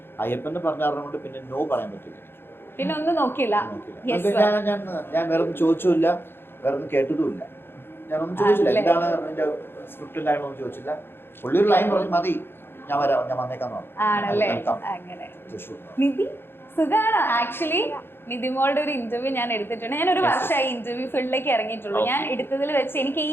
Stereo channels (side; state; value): right; late; 0.11 ms